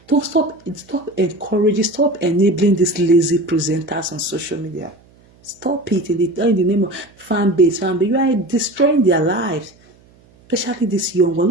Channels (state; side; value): noise; right; hum, 30 dB below the sound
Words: Don't stop encouraging, stop enabling these lazy presenters on social media. Stop it in the name of fan base. You are destroying their lives. Especially this young one.